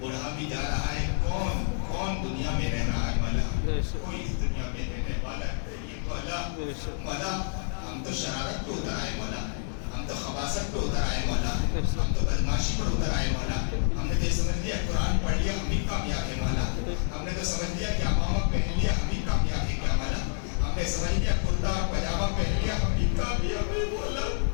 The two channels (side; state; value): right; silent; digital silence